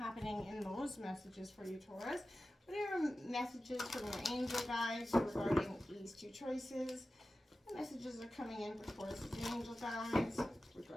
in those messages for you, Taurus. What are your messages from your angel guides regarding these two choices? What messages are coming in for Taurus' angel guides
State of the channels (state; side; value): normal; both; correlation 0.95